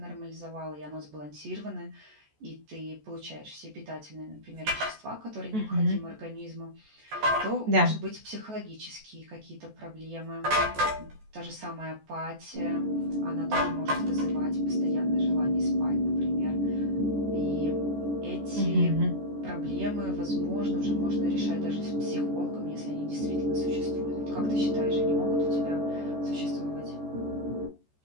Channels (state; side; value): late; left; 14 ms